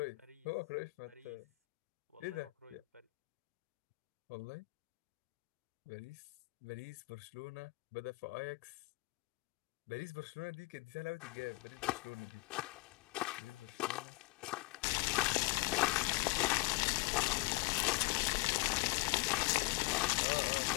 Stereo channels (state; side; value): quieter; right; 23.5 dB